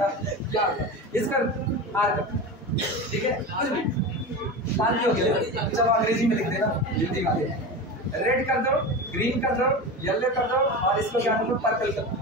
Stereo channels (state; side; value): normal; both; correlation 0.26